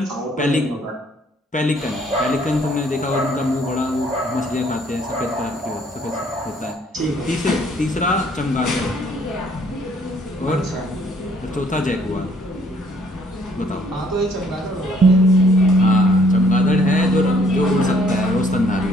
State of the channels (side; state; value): both; normal; correlation 0.63